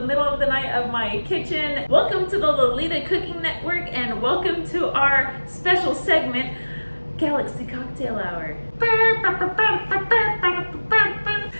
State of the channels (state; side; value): inverted; both; correlation -1.00